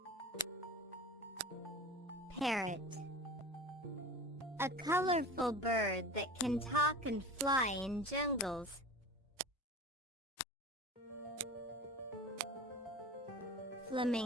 Parrot. A colorful bird that can talk and fly in jungles.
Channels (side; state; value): both; normal; correlation 0.34